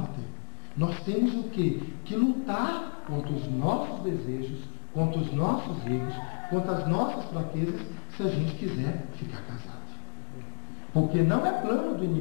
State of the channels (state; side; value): silent; right; 58 dB below the other